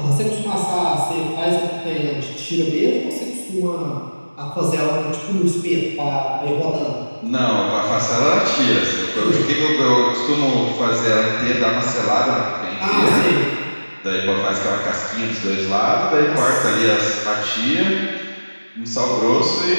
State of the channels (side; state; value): both; inverted; correlation -1.00